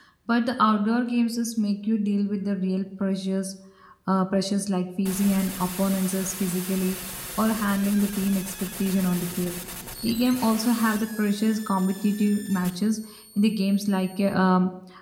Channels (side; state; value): both; identical; correlation 1.00